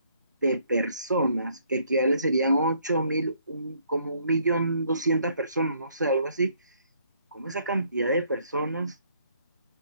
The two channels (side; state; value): both; inverted; correlation -0.66